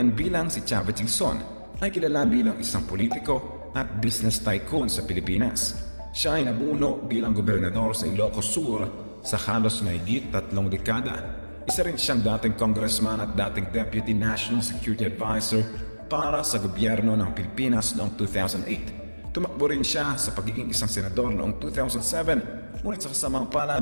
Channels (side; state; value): both; inverted; correlation -1.00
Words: bilang si Chavez Singson ay kilala bilang isang politiko at business tycoon sa Pilipinas. Siya ay nabuno bilang gobernador sa Ilocos Sur sa halos mahigit 3 dekada. Isa rin siyang dating congressman at dating deputy national security advisor para sa gobyerno ng Pilipinas noong 2008. Tumakbo rin siya sa pagiging isang senador noong 2007, ngunit sa kasamang